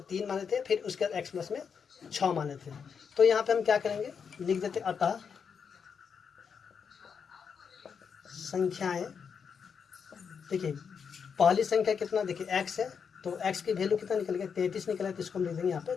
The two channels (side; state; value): right; quieter; 6.5 dB